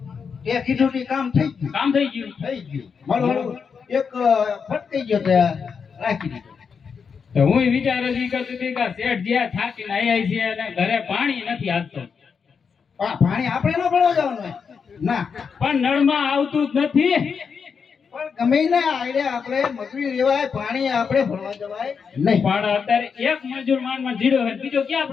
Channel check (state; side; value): quieter; right; 6.1 dB